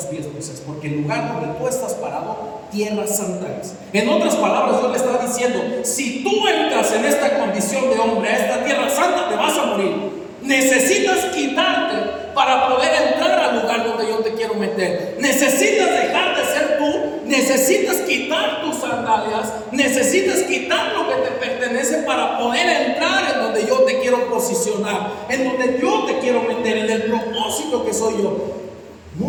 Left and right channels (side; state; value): both; identical; correlation 1.00